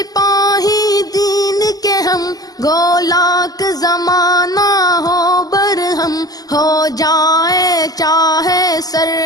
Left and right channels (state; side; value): late; right; 0.18 ms